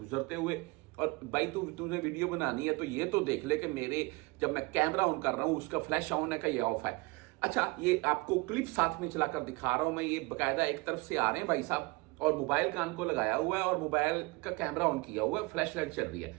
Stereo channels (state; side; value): quieter; left; 25.2 dB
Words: हुए। और भाई तुझे वीडियो बनानी है तो ये तो देख ले कि मेरे जब मैं कैमरा ऑन कर रहा हूं उसका फ्लैश ऑन है का ये ऑफ है। अच्छा, ये आपको क्लिप साथ में चलाकर दिखा रहा हूं मैं। ये बकायदा एक तरफ से आ रहे हैं भाई साहब और मोबाइल कान को लगाया हुआ है और मोबाइल का कैमरा ऑन किया हुआ है, फ्लैश लाइट चल रही है